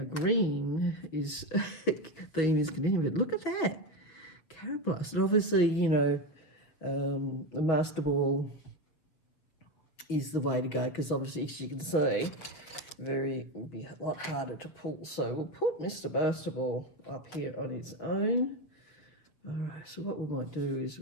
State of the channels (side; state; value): right; late; 6.8 ms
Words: green is, theme is continuing, but look at that. Carablast. And obviously, you know, the Master Ball is the way to go because obviously, as you can see, would be a lot harder to pull. So we'll put Mr. Master Ball up here on its own. All right, so what we might do is